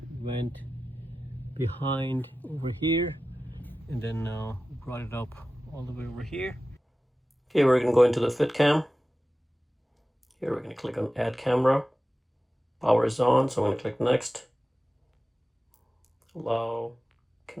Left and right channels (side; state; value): both; normal; correlation 0.95